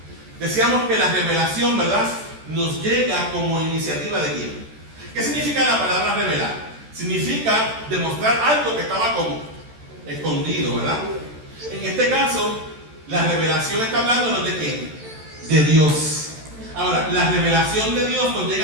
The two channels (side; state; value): left; late; 13 ms